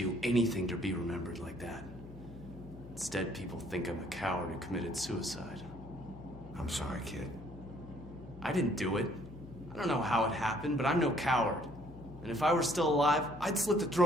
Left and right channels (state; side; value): noise; left; hum, 15 dB below the sound